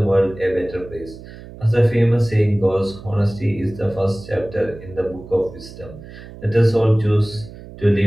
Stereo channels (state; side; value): noise; right; hum, 16 dB below the sound